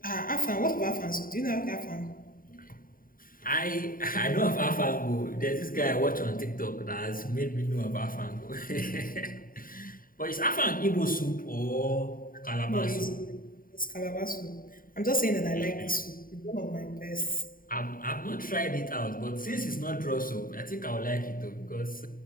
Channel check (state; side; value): late; right; 0.41 ms